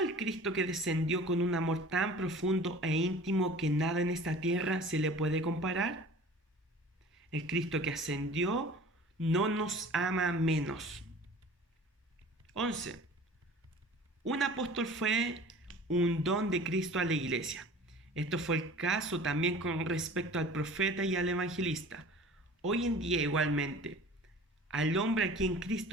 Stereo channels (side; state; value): both; normal; correlation 0.43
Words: Cristo que descendió con un amor tan profundo e íntimo que nada en esta tierra se le puede comparar? El Cristo que ascendió no nos ama menos. 11. Un apóstol fue un don de Cristo a la iglesia. Esto fue el caso también con respecto al profeta y al evangelista. Hoy en día igualmente, al hombre a quien